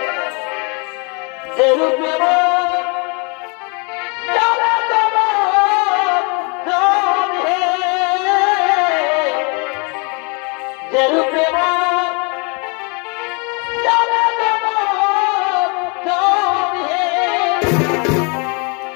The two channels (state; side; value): quieter; right; 33.0 dB